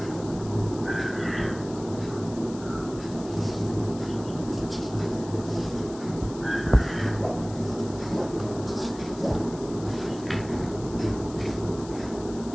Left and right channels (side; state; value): left; noise; hiss, 18 dB below the sound